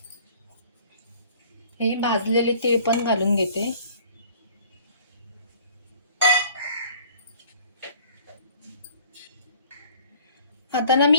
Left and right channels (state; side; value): inverted; both; correlation -0.53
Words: हे भाजलेले तीळ पण घालून घेते. आता ना